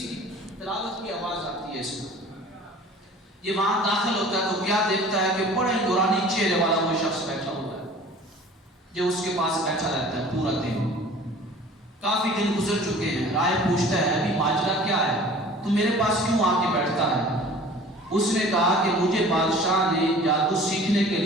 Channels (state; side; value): normal; both; correlation 0.46